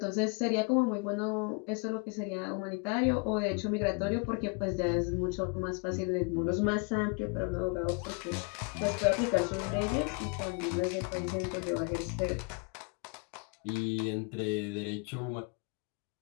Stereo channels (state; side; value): quieter; right; 33.1 dB